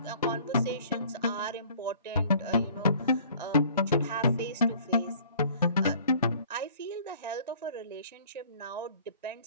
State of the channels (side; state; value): both; inverted; correlation -0.53